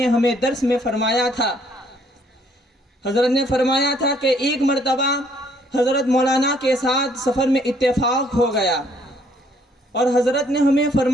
ہمیں درس میں فرمایا تھا۔ حضرت نے فرمایا تھا کہ ایک مرتبہ حضرت مولانا کے ساتھ سفر میں اتفاق ہو گیا اور حضرت نے ہمیں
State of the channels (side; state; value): both; normal; correlation 0.65